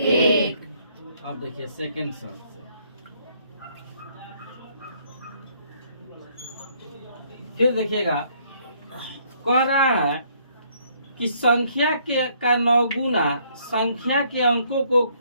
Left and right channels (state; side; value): inverted; both; correlation -0.66